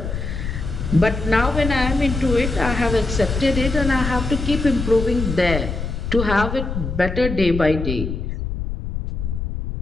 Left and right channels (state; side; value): noise; left; rumble, 4 dB below the sound